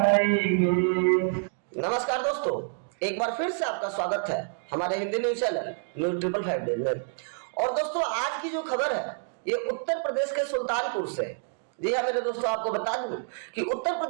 नमस्कार दोस्तों, एक बार फिर से आपका स्वागत है हमारे Hindi news channel news 555 days में। और दोस्तों, आज की जो खबर है ये उत्तर प्रदेश के सुल्तानपुर से। जी हाँ मेरे दोस्तों, आपको बता दूं कि उत्तर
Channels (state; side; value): silent; left; digital silence